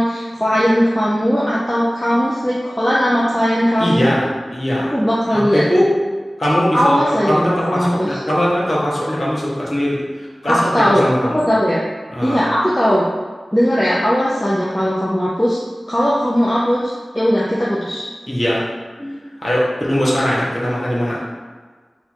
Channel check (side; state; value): both; normal; correlation 0.97